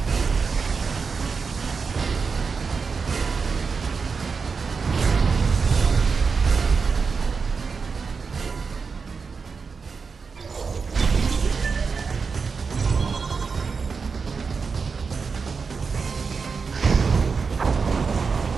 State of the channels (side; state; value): left; quieter; 5.1 dB